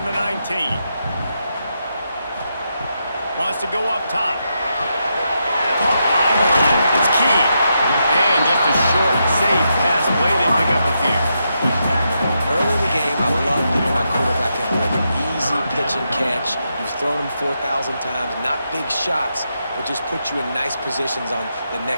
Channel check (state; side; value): inverted; both; correlation -0.83